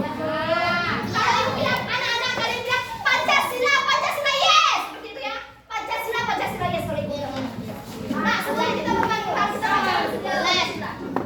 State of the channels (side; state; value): both; identical; correlation 1.00